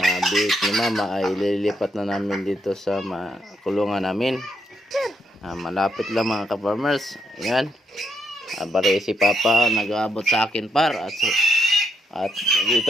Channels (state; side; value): normal; both; correlation 0.77